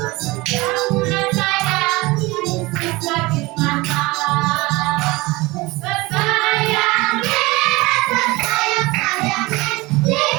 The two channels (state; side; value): quieter; left; 22.2 dB